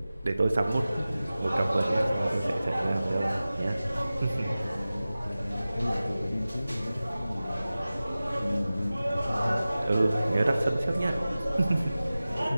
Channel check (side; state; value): both; inverted; correlation -0.96